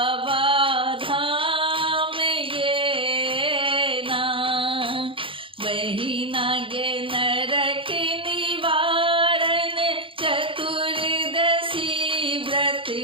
धाम गे ना बहिना गे नरक निवारण चतुर्दशी व्रत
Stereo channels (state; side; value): late; left; 0.25 ms